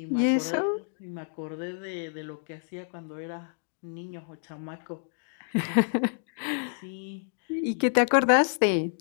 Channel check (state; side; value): silent; right; digital silence